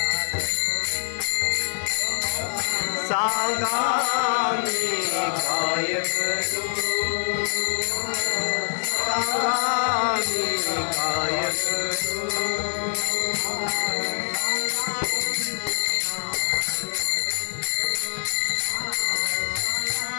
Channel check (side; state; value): right; silent; 62 dB below the other